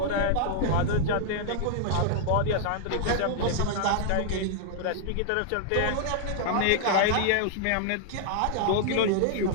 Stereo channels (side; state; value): both; different; correlation -0.01